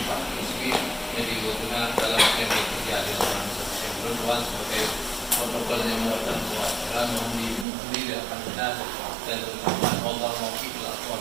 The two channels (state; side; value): drops out; left; at 7.7 s